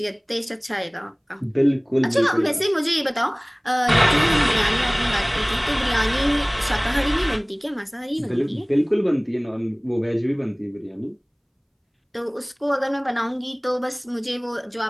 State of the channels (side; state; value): both; identical; correlation 1.00